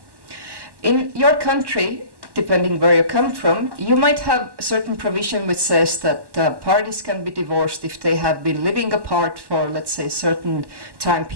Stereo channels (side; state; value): left; late; 1.1 ms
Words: In your country, depending where you come from, you might have a certain provision which says that parties can be divorced if they have been living apart for, let's say, a certain time